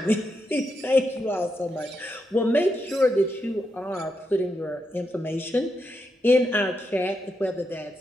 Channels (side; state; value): both; normal; correlation 0.84